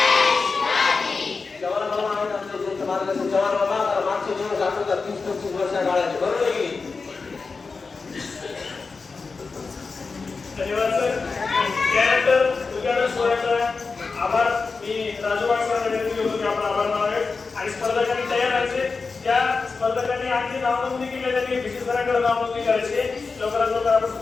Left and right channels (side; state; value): right; quieter; 4.4 dB